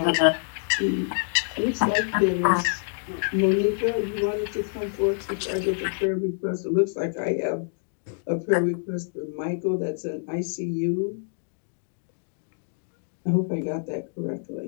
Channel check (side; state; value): right; silent; digital silence